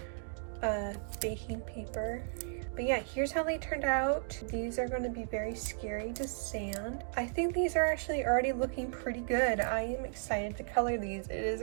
baking paper. But yeah, here's how they turned out. These are going to be very scary to sand. I think these are actually already looking pretty good. I am excited to color these. It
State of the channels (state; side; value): silent; left; digital silence